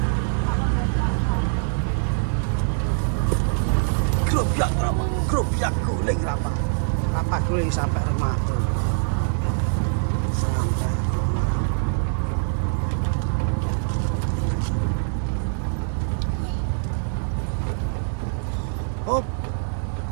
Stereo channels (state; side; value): silent; left; digital silence